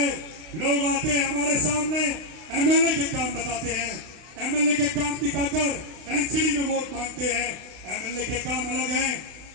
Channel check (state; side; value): late; left; 32 ms